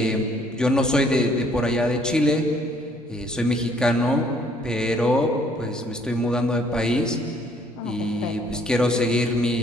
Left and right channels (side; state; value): both; normal; correlation 0.63